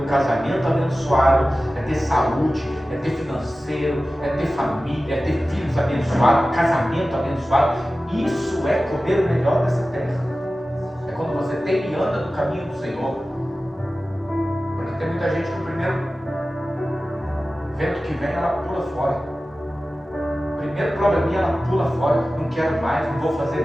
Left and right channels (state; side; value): normal; both; correlation 0.95